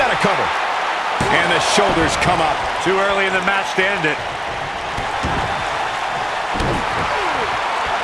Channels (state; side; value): identical; both; correlation 1.00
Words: got a cover. And the shoulders come up. Too early in the match to end it.